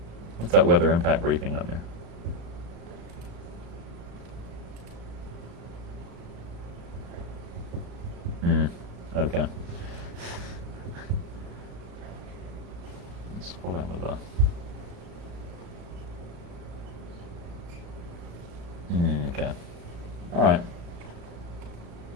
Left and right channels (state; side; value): late; left; 35 ms